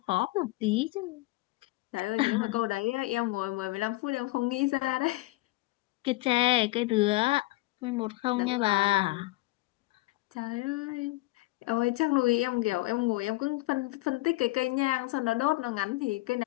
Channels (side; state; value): right; quieter; 20.5 dB